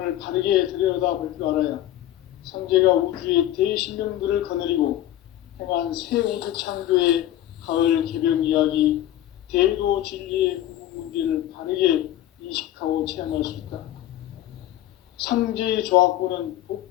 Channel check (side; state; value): right; quieter; 13.0 dB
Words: 바르게 들여다볼 줄 알아야 상제가 우주의 대신명들을 거느리고 행한 새 우주 창조의 가을 개벽 이야기, 대도 진리의 궁극 문제를 바르게 인식하고 체험할 수 있다. 상제의 조화권은